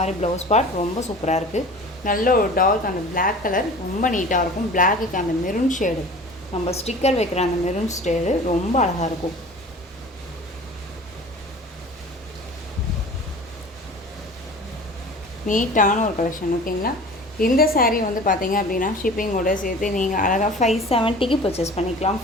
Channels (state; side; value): normal; both; correlation 0.41